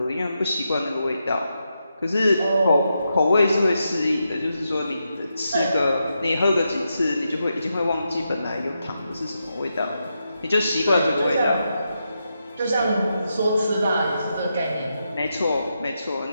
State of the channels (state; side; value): inverted; both; correlation -0.85